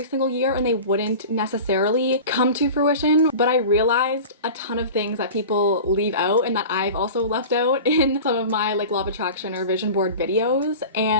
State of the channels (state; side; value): inverted; both; correlation -0.35